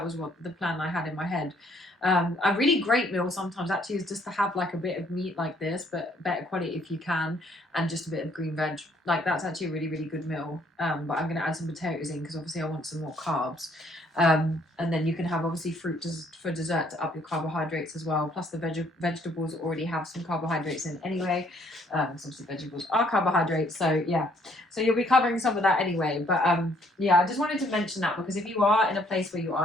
was what the plan I had in my head. A really great meal sometimes actually is just to have like a bit of meat like this, but better quality if you can, and just a bit of green veg. Like that's actually a really, really good meal. But I'm going to add some potatoes in because obviously I want some more carbs. And then you can have obviously fruit for dessert to up your carbohydrates as well. Plus the vegetables already have some carbohydrates in anyway. So obviously vegetables are carbohydrates. So yeah, so you'll be covering some of that anyway. But yeah, I just wanted to mention that because if you are in a place where you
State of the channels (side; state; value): both; normal; correlation 0.65